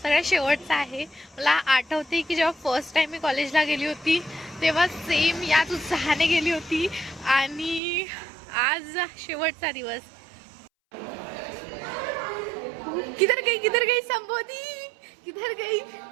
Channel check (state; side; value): drops out; left; at 7.8 s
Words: सगळ्यात शेवटचा आहे. मला आठवते की जेव्हा फर्स्ट टाइम मी कॉलेजला गेली होती तेव्हा सेम याच उत्साहाने गेली होती आणि आज शेवटचा दिवस. किधर गई संबोधी, किधर गई?